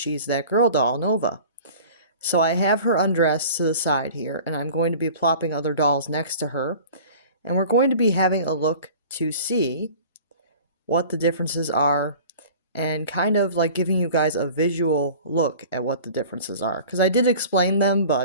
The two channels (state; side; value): inverted; both; correlation -0.43